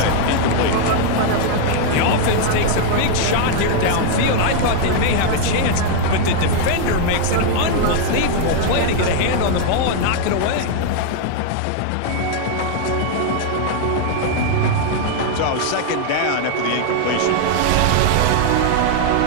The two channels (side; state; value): both; different; correlation 0.00